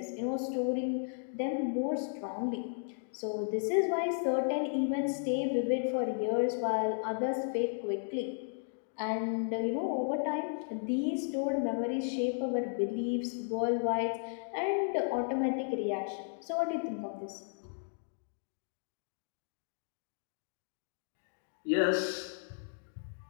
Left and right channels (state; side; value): silent; right; digital silence